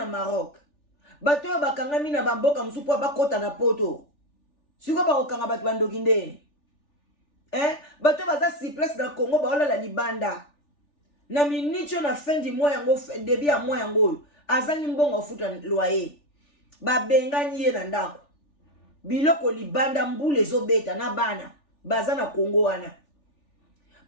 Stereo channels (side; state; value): right; late; 3.4 ms